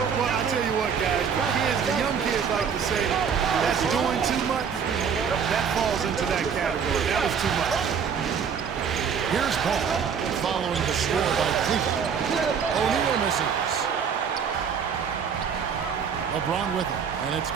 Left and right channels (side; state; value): left; quieter; 6.8 dB